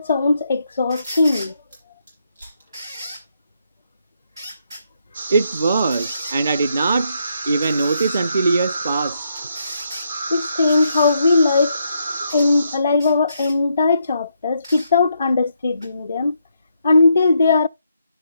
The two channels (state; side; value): inverted; both; correlation -0.78